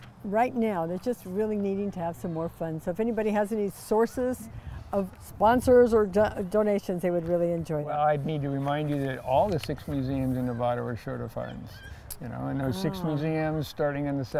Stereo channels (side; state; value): both; identical; correlation 1.00